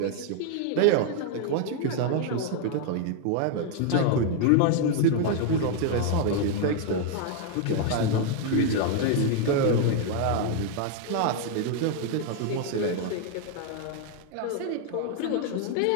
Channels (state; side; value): different; both; correlation 0.00